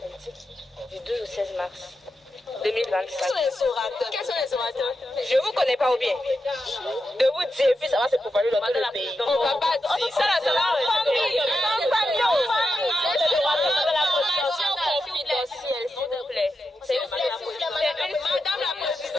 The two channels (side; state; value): both; normal; correlation 0.88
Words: du 12 au 16 mars 2025. Quels sont les orateurs? Je vous connais pas ou bien? De vous dire, puis ça va se propager dans tout le pays. On va pas dire ça, là, ça va. Famille. Confidentielle, s'il vous plaît. C'est madame la